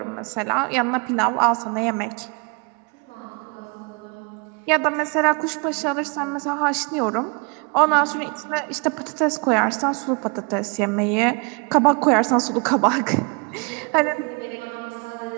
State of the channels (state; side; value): quieter; left; 32.5 dB